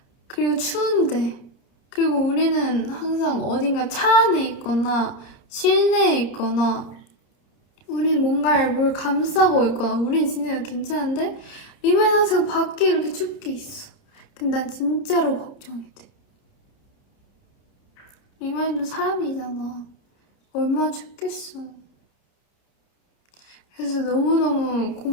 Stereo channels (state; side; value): late; right; 30 ms